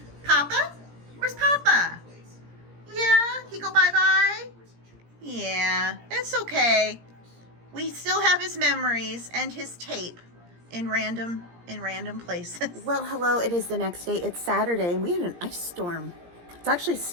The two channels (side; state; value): left; late; 17 ms